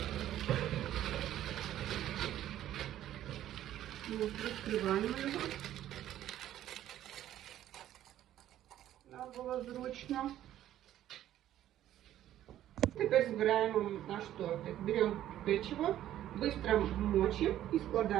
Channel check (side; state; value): left; quieter; 12.4 dB